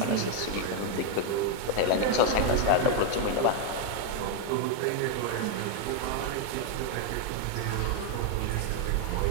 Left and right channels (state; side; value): different; both; correlation 0.00